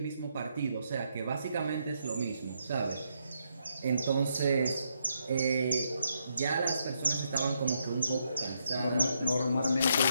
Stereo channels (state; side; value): inverted; both; correlation -0.78